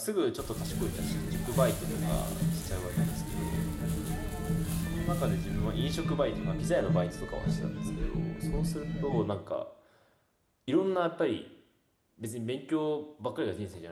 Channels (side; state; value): both; identical; correlation 1.00